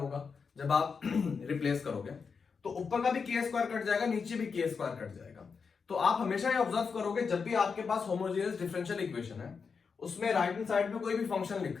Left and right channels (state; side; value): quieter; right; 5.5 dB